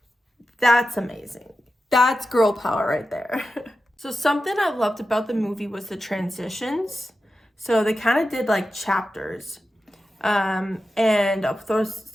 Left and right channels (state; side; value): normal; both; correlation 0.92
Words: that's amazing. That's girl power right there. So something I loved about the movie was the transitions. So they kind of did like chapters. And I'll